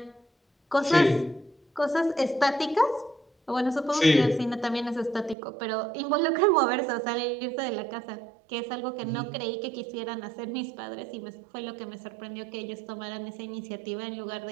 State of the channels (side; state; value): left; drops out; at 5.4 s